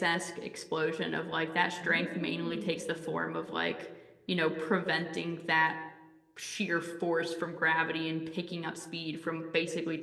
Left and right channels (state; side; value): identical; both; correlation 1.00